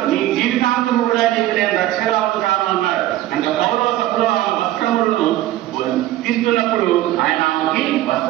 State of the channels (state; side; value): quieter; left; 14.7 dB